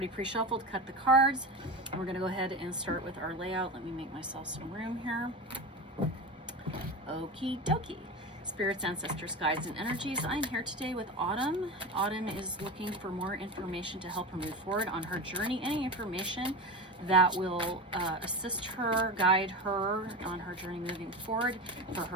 pre-shuffled, cut the cards, and we're gonna go ahead and start with our layout. Let me make myself some room here. Okie dokie. Spirits, ancestors, guides, and energies. I'm here today with Autumn. Autumn is looking for more information to help her move forward on her journey. Any information that will assist her, guide her on her journey moving forward for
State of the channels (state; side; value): normal; both; correlation 0.24